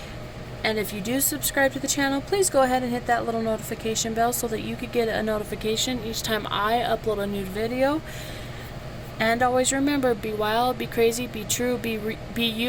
And if you do subscribe to the channel, please go ahead and hit that little notification bell so that you could get a notification each time I upload a new video. And always remember, be wild, be crazy, be true, be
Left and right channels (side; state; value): both; identical; correlation 1.00